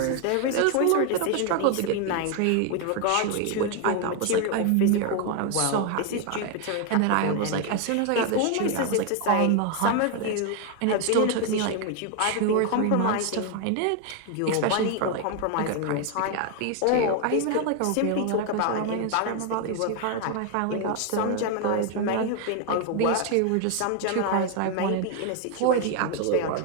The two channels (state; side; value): different; both; correlation 0.01